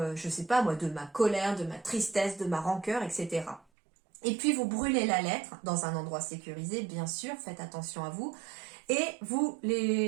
je sais pas moi, de ma colère, de ma tristesse, de ma rancœur, etc. Et puis vous brûlez la lettre dans un endroit sécurisé, bien sûr, faites attention à vous. Et vous,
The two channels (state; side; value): drops out; left; at 3.6 s